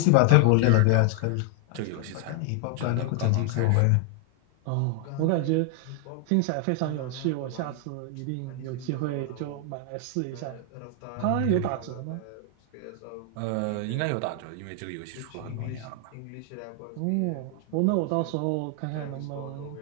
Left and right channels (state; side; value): different; both; correlation 0.00